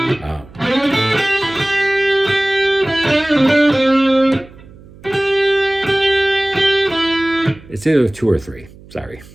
It's either 2 or 3. Sorry.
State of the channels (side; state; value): right; noise; hum, 22 dB below the sound